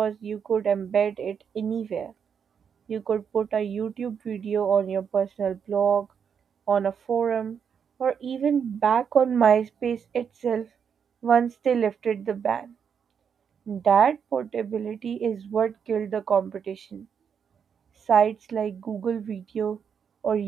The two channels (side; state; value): left; quieter; 7.2 dB